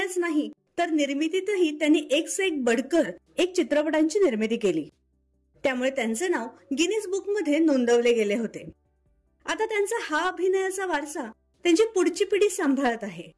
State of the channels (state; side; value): identical; both; correlation 1.00